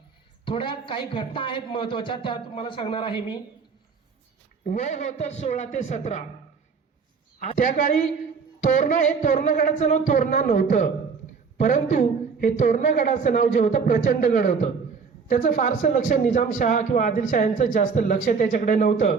थोड्या काही घटना आहेत महत्वाच्या, त्या तुम्हाला सांगणार आहे मी. वय होतं 16 ते 17. त्या काळी तोरणा हे तोरणगडाचं नाव तोरणा नव्हतं, परंतु हे तोरणगडाचं नाव जे होतं प्रचंडगड होतं. त्याचं फारसं लक्ष निजामशाह किंवा आदिलशाह यांचं जास्त लक्ष त्याच्याकडे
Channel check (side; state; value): left; quieter; 5.5 dB